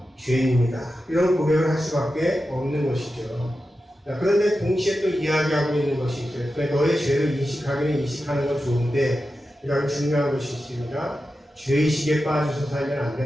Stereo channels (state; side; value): normal; both; correlation 0.91